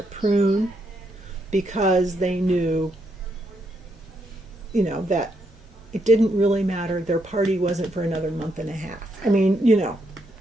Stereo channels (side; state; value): both; normal; correlation 0.78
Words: prune, because they knew, that it didn't really matter. Their party wasn't for another month and a half. I mean,